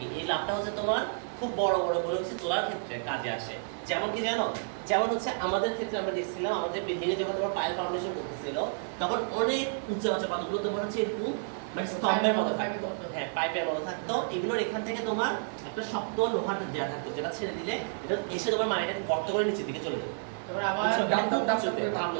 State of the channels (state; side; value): silent; left; 57 dB below the other